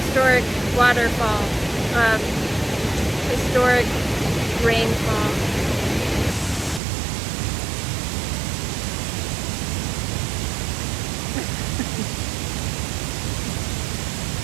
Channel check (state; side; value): drops out; left; at 6.8 s